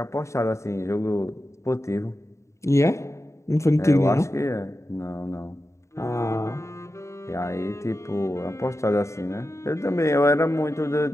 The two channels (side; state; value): right; late; 0.14 ms